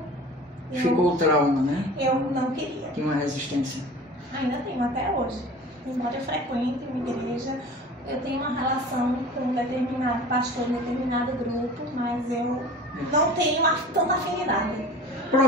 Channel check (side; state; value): both; normal; correlation 0.40